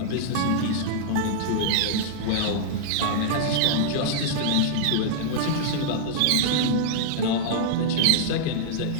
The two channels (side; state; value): both; different; correlation -0.02